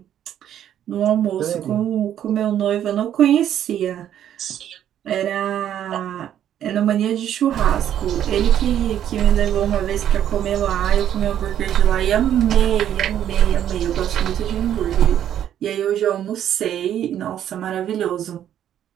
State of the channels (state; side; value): quieter; left; 10.5 dB